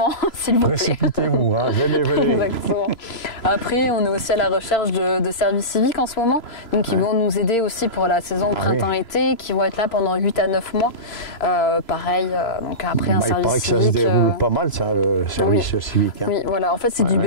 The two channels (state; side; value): late; right; 3.0 ms